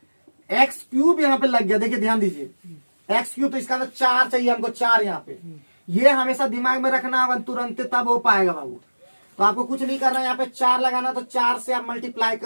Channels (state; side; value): inverted; both; correlation -1.00